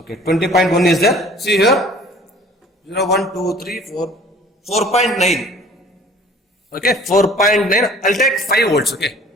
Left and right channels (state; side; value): normal; both; correlation 0.50